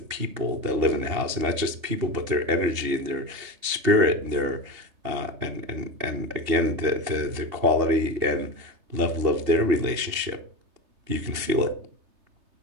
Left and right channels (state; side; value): late; left; 3.3 ms